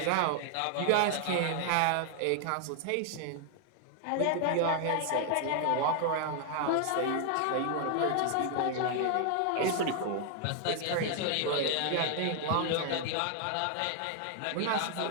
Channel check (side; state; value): both; different; correlation 0.00